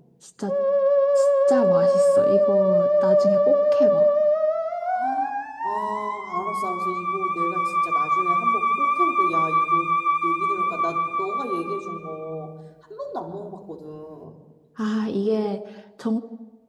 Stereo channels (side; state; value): both; identical; correlation 1.00